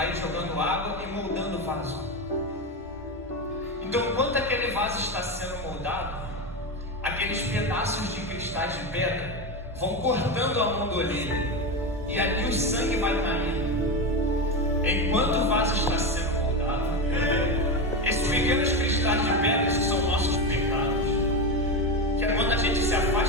jogando água e moldando o vaso. Então, enquanto aquele vaso está sendo moldado, aqueles pedaços de cristais de pedra vão cortando a mão do oleiro, e ali o sangue vai caindo. Enquanto o vaso está sendo moldado, esses pequenos cristais de pedras que são nossos pecados, que é quando a gente se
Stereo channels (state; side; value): normal; both; correlation 0.16